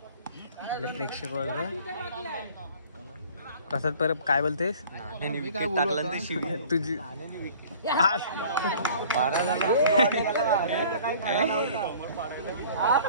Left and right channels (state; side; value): inverted; both; correlation -0.49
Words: आपले प्रेक्षक वर्ग प्रसाद परब काय बोलतेस? टाकलं तर शिव तुझी